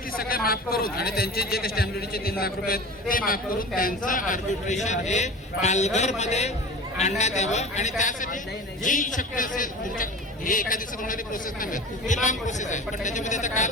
सगळ्या माफ करून आणि त्यांचे जे काही स्टॅम्प ड्युटीचे 3 लाख रुपये आहेत ते माफ करून त्यांचं आर्बिट्रेशन हे पालघरमध्ये आणण्यात यावं आणि त्यासाठी जी शक्य असेल तुमच्या हे एका दिवसात होणारी प्रोसेस नाही, ही लॉंग प्रोसेस आहे. पण त्याच्यामध्ये आता काल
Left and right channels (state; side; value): normal; both; correlation 0.35